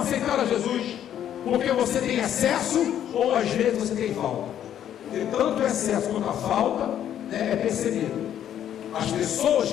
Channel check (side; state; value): right; quieter; 10.4 dB